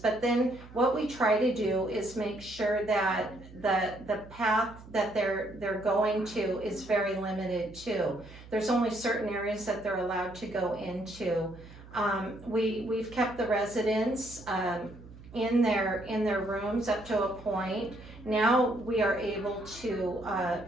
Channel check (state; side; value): noise; right; hum, 18 dB below the sound